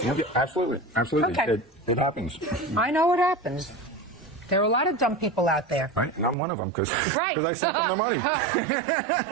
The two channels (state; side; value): drops out; left; at 6.4 s